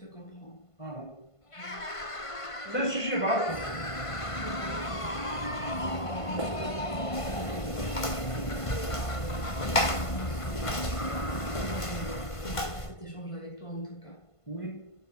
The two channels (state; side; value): late; right; 1.5 ms